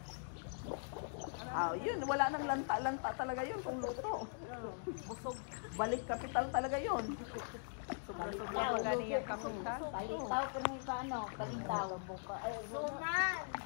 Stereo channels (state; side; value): silent; right; digital silence